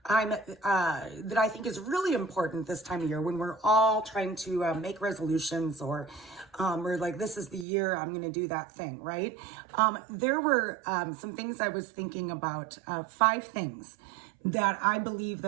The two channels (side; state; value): left; drops out; at 7.7 s